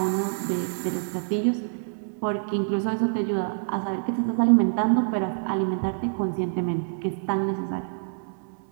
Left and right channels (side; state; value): left; silent; digital silence